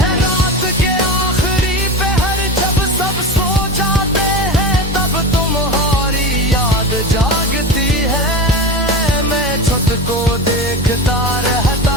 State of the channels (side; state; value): both; normal; correlation 0.25